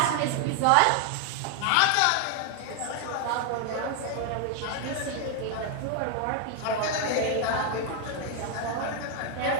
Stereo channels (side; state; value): both; different; correlation 0.00